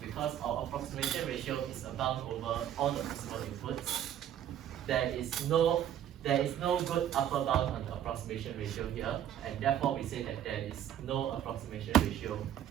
because our approximation ratio is abound over all the possible inputs, there is no good upper bound on the approximation ratio here, and therefore we say that there is no approximation ratio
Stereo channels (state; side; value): quieter; left; 10.6 dB